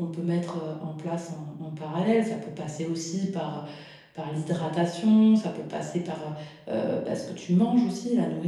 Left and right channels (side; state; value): both; identical; correlation 1.00